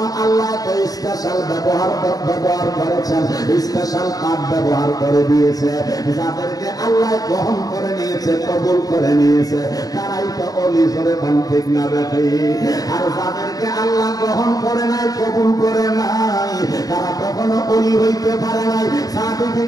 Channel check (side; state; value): right; late; 0.18 ms